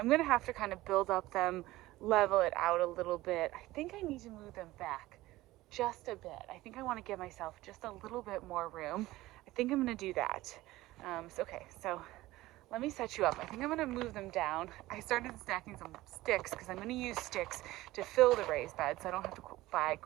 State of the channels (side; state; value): left; quieter; 17.6 dB